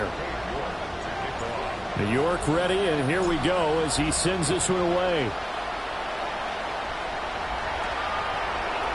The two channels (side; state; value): both; identical; correlation 1.00